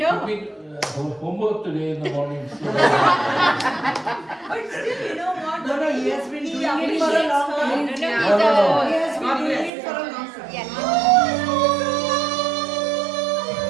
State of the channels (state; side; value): drops out; left; at 9.7 s